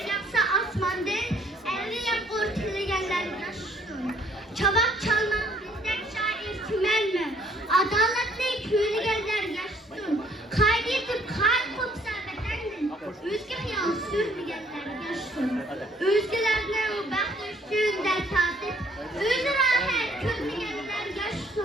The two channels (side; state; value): both; normal; correlation 0.63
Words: asmandan, elli yap ortalayanlar yaşasın. Çabak çalmak bizdek şair tümen mi? Adaletli yürügenler yaşasın. Kaydedip kalp kopsa bedendin. Özge hayal sürmeyenler yaşasın. Özgelerine o bakışın dert tatip. Öz rahat körmeyenler